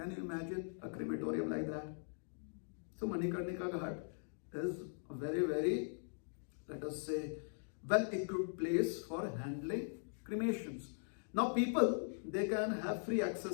you imagine a crematorium like that? So Manikarnika Ghat is a very, very, let us say, well-equipped place for handling cremations. Now people, they can have free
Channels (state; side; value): silent; right; digital silence